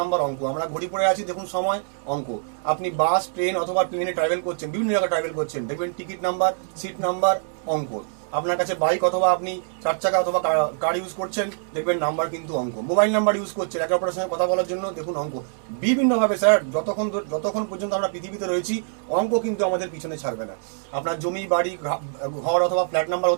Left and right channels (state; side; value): silent; left; digital silence